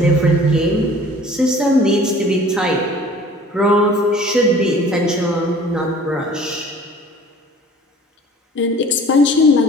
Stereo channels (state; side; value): normal; both; correlation 0.48